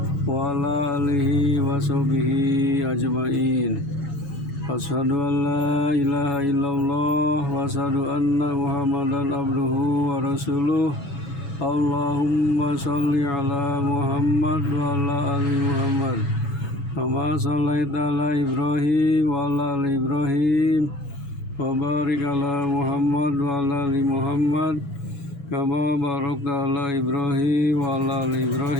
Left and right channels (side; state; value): right; late; 7.1 ms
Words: wa ala alihi wa sahbihi ajmain. Asyhadu an la ilaha illallah wa asyhadu anna Muhammadan abduhu wa rasuluh. Allahumma sholli ala Muhammad wa ala ali Muhammad kama shallaita ala Ibrahim wa ala ali Ibrahim wa barik ala Muhammad wa ala ali Muhammad kama barakta ala Ibrahim wa ala ali